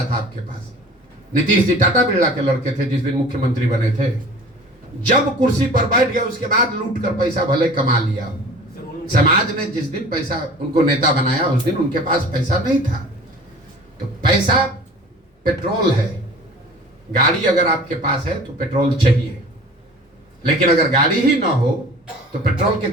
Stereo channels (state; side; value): normal; both; correlation 0.43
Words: था आपके पास? नीतीश जी टाटा बिरला के लड़के थे जिस दिन मुख्यमंत्री बने थे। जब कुर्सी पर बैठ गए उसके बाद लूट कर पैसा भले कमा लिया। समाज ने जिस दिन पैसा उनको नेता बनाया उस दिन उनके पास पैसा नहीं था। तो पैसा पेट्रोल है। गाड़ी अगर आपके पास है तो पेट्रोल चाहिए, लेकिन अगर गाड़ी ही ना हो तो पेट्रोल के